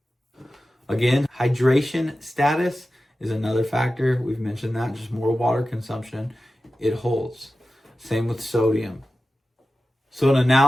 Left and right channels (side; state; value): both; normal; correlation 0.94